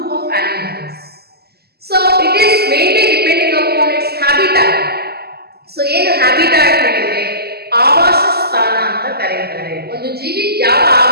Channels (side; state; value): left; late; 0.46 ms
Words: of animals. So it is mainly depending upon its habitat. So ಏನು habitat ಹೇಳಿದ್ರೆ ಆವಾಸ ಸ್ಥಾನ ಅಂತ ಕರೆಯುತ್ತಾರೆ. ಒಂದು ಜೀವಿ ಯಾವ